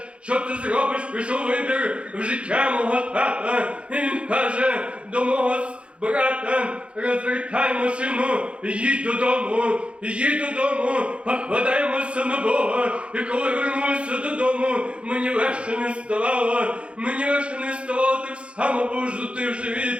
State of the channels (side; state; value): left; late; 0.059 ms